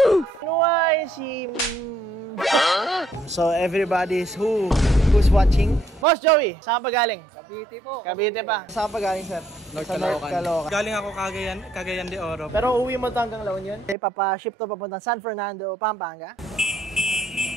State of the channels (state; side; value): normal; both; correlation 0.69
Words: Nuway si... So, everybody's who's watching? Boss Joey, saan pa galing? Cavite po. Cavite pa. Saan pa galing, sir? North Caloocan. Galing ako Cagayan de Oro. Pero uwi mo to hanggang La Union? Papa-ship to papunta San Fernando, Pampanga.